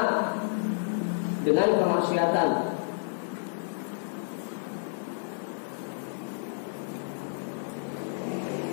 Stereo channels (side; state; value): right; silent; digital silence